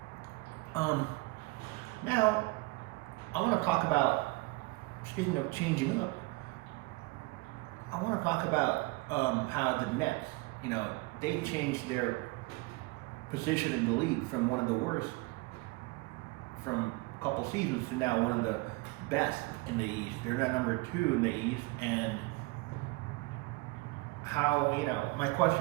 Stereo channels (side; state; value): left; quieter; 24.0 dB